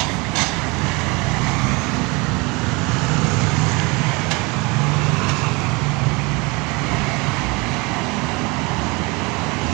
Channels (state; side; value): quieter; left; 26.7 dB